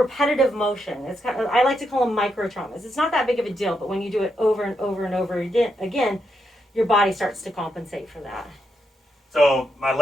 motion. It's kind of, I like to call them micro traumas. It's not that big of a deal, but when you do it over and over and over again, your body starts to compensate for that. So my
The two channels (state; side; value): normal; both; correlation 0.82